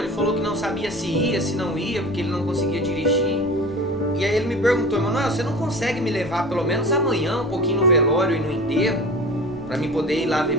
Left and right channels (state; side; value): normal; both; correlation 0.36